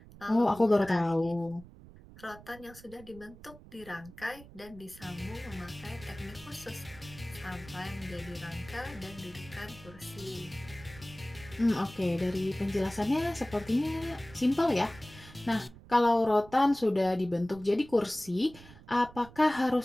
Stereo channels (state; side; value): noise; right; rumble, 19 dB below the sound